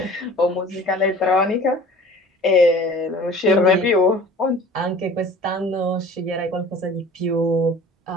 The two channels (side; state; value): both; normal; correlation 0.44